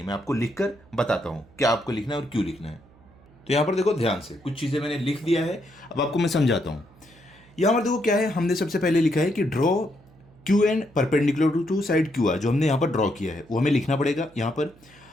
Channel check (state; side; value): noise; right; hum, 27 dB below the sound